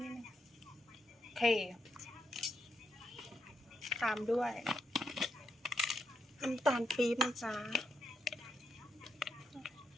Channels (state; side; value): normal; both; correlation 0.81